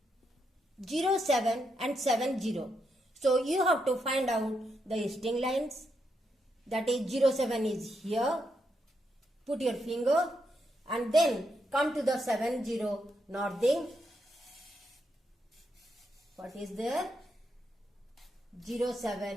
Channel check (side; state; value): both; normal; correlation 0.81